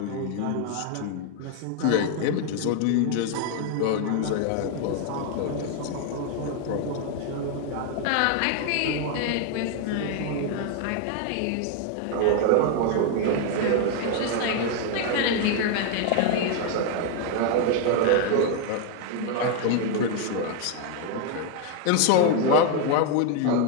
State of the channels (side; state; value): both; different; correlation 0.01